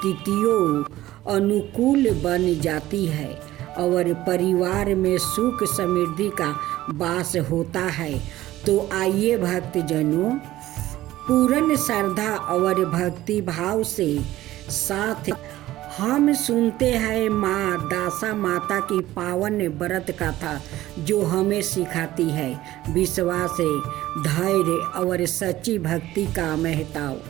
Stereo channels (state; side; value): quieter; left; 15.4 dB